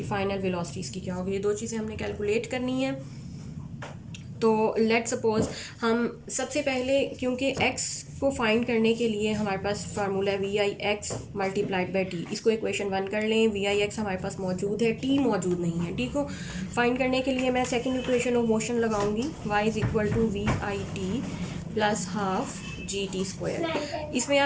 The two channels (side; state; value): both; identical; correlation 1.00